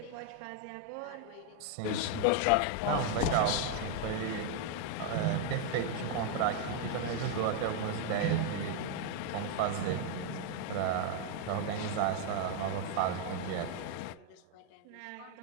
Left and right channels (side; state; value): both; different; correlation 0.00